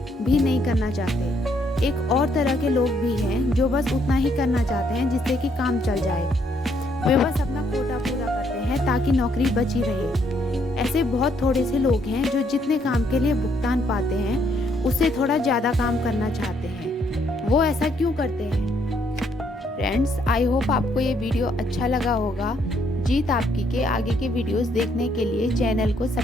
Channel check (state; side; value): normal; both; correlation 0.70